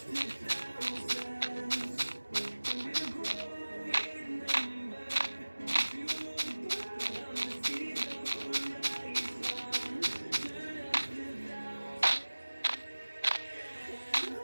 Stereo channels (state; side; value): inverted; both; correlation -1.00